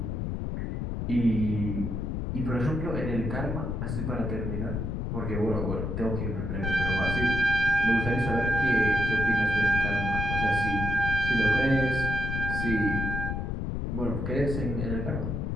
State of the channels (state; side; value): noise; left; rumble, 2 dB below the sound